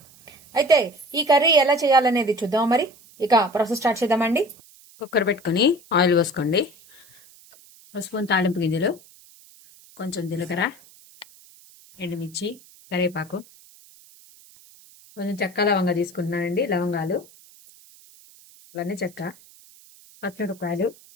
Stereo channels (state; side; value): noise; right; hiss, 25 dB below the sound